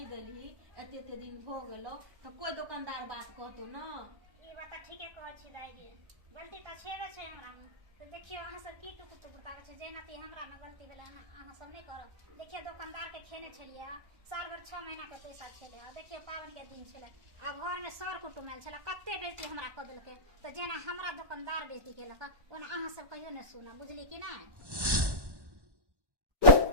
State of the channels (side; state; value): left; late; 1.1 ms